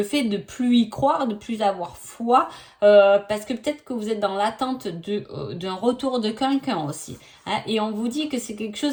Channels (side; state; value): both; identical; correlation 1.00